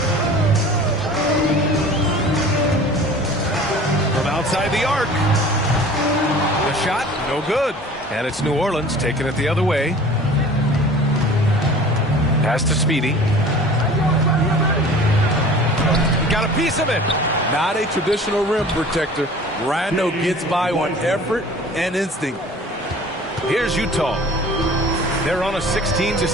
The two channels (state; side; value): normal; both; correlation 0.44